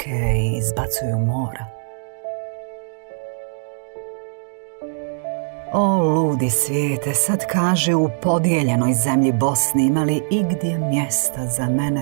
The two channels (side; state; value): left; silent; digital silence